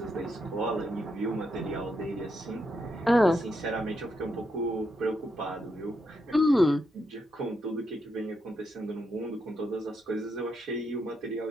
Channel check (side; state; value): both; normal; correlation 0.81